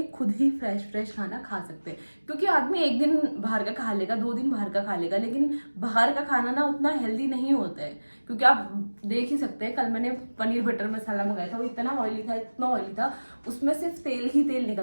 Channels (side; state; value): both; inverted; correlation -1.00